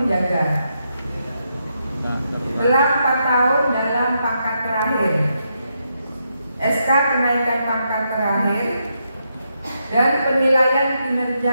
penjaga. Setelah 4 tahun dalam pangkat terakhir, SK kenaikan pangkat terakhir, dan penilaian kinerja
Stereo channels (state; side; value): inverted; both; correlation -0.81